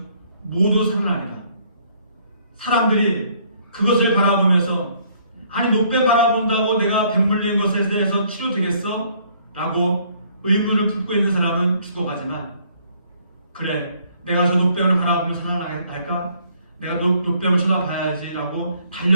모두 살아나리라. 사람들이 그것을 바라보면서 아니 노뱀 바라본다고 내가 뱀 물린 것에 대해서 치료되겠어? 라고 의문을 품고 있는 사람은 죽어가지만 그래 내가 저 노뱀을 바라보면 살아날까? 내가 노뱀을 쳐다봐야지 라고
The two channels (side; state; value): both; inverted; correlation -0.64